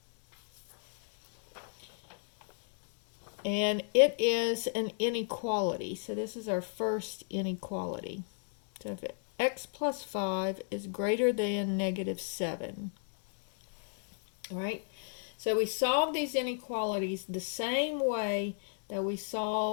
And it is an inequality. So this is our first inequality. So if x plus 5 is greater than negative 7. All right? So we solve these inequalities the same way that we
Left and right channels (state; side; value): silent; right; digital silence